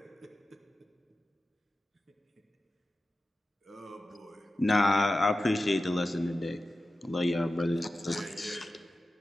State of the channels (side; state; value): both; normal; correlation 0.94